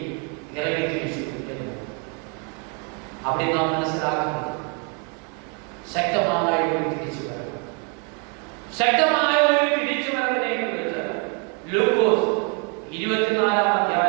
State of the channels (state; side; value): quieter; left; 36.4 dB